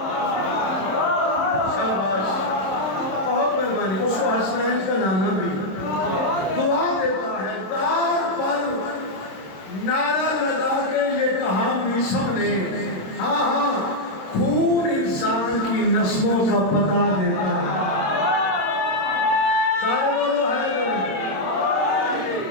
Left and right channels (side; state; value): right; late; 26 ms